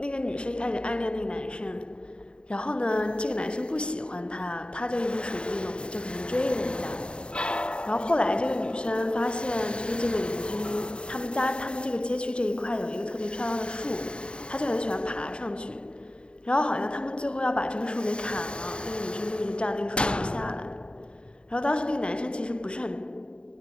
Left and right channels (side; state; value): right; late; 0.052 ms